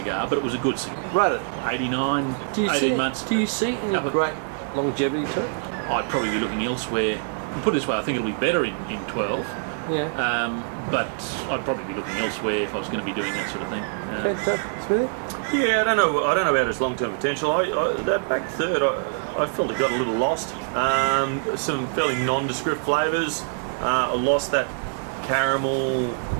but it was a good cigar. right it. 89, Do you 18 see? months. Do you see any Up a- great longevity to it? I'd probably be looking elsewhere. Put it this way, I think it'll be better in 12. Yeah. But I'd probably be looking elsewhere if I was going to be doing that sort of thing. Smithy? Yeah, I don't know about its long-term potential. That back third, I felt it got a little lost. Some fairly nondescript flavours. I lost that caramel,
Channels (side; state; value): left; silent; digital silence